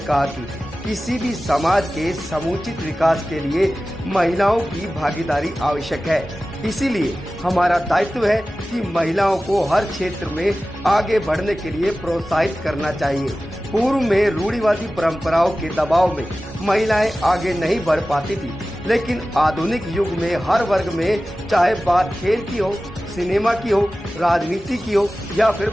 कहा कि किसी भी समाज के समुचित विकास के लिए महिलाओं की भागीदारी आवश्यक है। इसीलिए हमारा दायित्व है कि महिलाओं को हर क्षेत्र में आगे बढ़ने के लिए प्रोत्साहित करना चाहिए। पूर्व में रूढ़िवादी परंपराओं के दबाव में महिलाएं आगे नहीं बढ़ पाती थी, लेकिन आधुनिक युग में हर वर्ग में, चाहे बात खेल की हो, सिनेमा की हो, राजनीति की हो या फिर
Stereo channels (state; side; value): normal; both; correlation 0.96